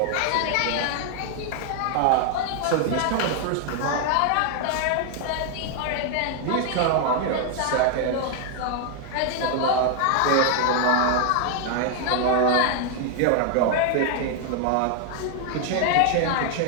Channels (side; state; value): both; different; correlation 0.00